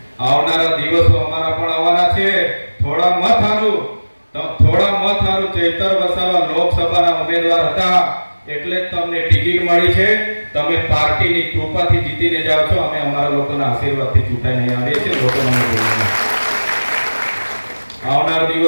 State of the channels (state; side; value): inverted; both; correlation -1.00